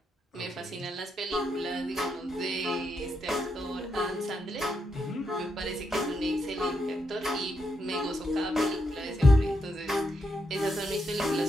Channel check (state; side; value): normal; both; correlation 0.81